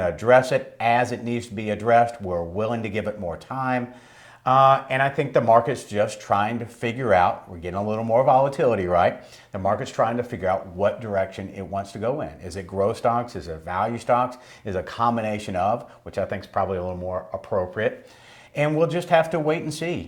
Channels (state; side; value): identical; both; correlation 1.00